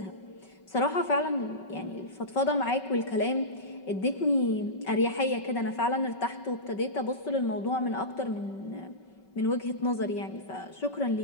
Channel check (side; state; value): right; late; 5.3 ms